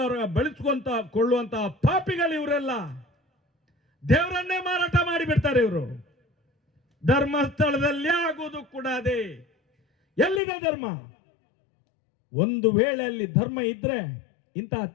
ಬಳಸ್ಕೊಂತ ಕೊಳ್ಳುವಂತಹ ಪಾಪಿಗಳು ಇವರೆಲ್ಲ. ದೇವರನ್ನೇ ಮಾರಾಟ ಮಾಡಿಬಿಡ್ತಾರೆ ಇವರು. ಧರ್ಮಸ್ಥಳದಲ್ಲಿ ಆಗುವುದು ಕೂಡ ಅದೇ. ಎಲ್ಲಿದೆ ಧರ್ಮ? ಒಂದು ವೇಳೆ ಅಲ್ಲಿ ಧರ್ಮ ಇದ್ರೆ ಇಂಥ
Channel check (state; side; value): drops out; right; at 10.4 s